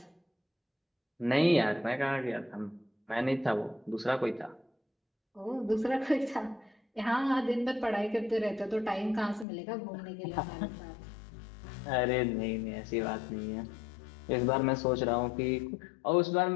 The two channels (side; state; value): right; drops out; at 9.5 s